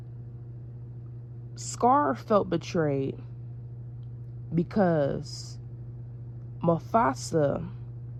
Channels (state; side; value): identical; both; correlation 1.00